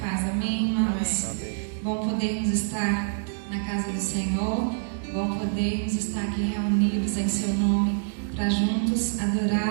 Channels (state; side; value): silent; left; digital silence